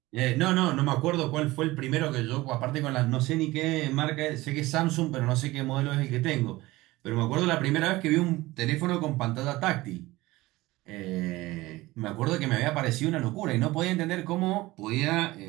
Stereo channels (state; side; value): quieter; left; 19.3 dB